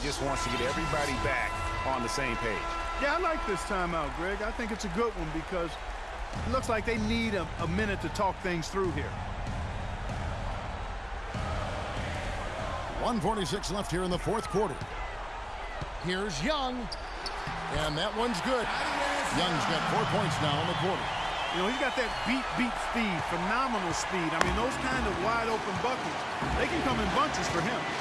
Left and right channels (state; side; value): identical; both; correlation 1.00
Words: just wants to get everybody back on the same page. Yeah, I like this timeout, Greg. I think it's a good one because it looks like they need a minute to talk things through here. 1:46 left here in the fourth quarter. Here's Young. And that one's good. Young's got 4 points now in the quarter. You know, he's got that beat speed, phenomenal speed. I mean, those kind of wide-open buckets, they can come in bunches for him.